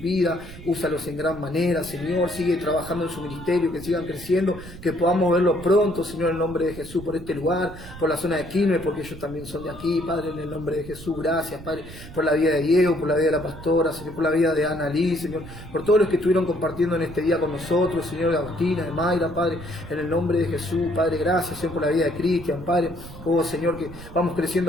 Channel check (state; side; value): noise; right; rumble, 15 dB below the sound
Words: úsalos en gran manera, Señor, sigue trabajando en su ministerio, que sigan creciendo, que podamos verlo pronto, Señor, en el nombre de Jesús, por este lugar, por la zona de Quilmes, porque ellos también son de aquí, Padre, en el nombre de Jesús. Gracias, Padre, por la vida de Diego, por la vida de la pastora, Señor, por la vida de Ana Liz, Señor, por todos los que estuvieron compartiendo en este día con nosotros, Señor, de Agustina, de Mayra, Padre, en el nombre de Jesús, Padre, gracias, Señor, por la vida de Cristian, Padre, oh Señor, que vamos